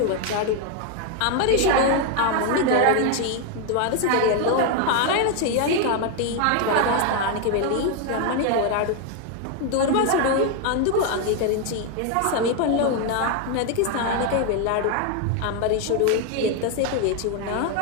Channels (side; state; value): both; different; correlation 0.01